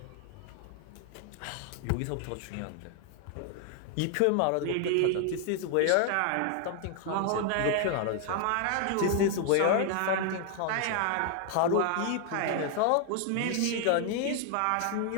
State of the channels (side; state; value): both; different; correlation 0.00